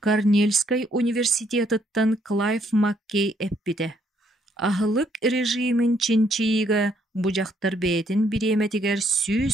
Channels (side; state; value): both; normal; correlation 0.70